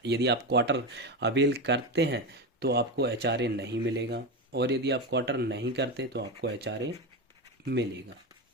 यदि आप क्वार्टर अवेल करते हैं तो आपको एचआरए नहीं मिलेगा, और यदि आप क्वार्टर नहीं करते तो आपको एचआरए मिलेगा।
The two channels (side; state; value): both; normal; correlation 0.16